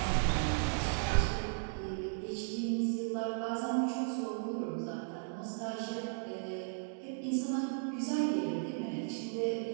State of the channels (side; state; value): left; silent; digital silence